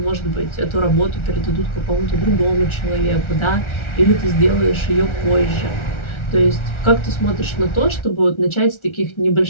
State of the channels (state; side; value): late; right; 1.4 ms